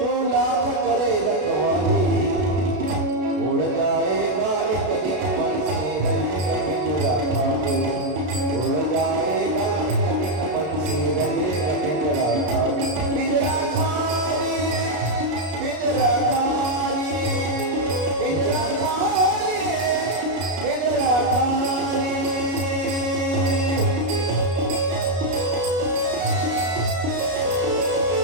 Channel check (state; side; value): late; left; 32 ms